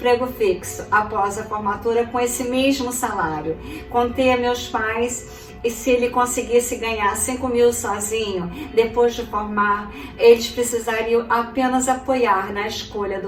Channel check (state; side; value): identical; both; correlation 1.00